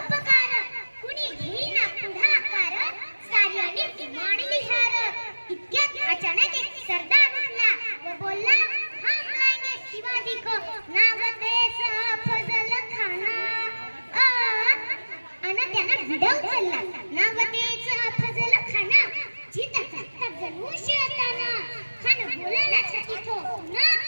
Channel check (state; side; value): inverted; both; correlation -1.00